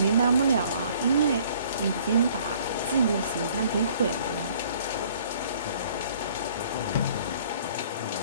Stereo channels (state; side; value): inverted; both; correlation -0.57